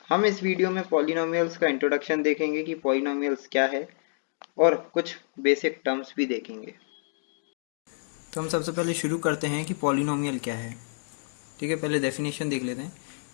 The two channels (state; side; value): silent; right; digital silence